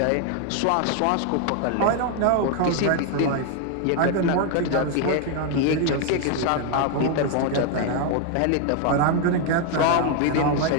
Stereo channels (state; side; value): different; both; correlation 0.00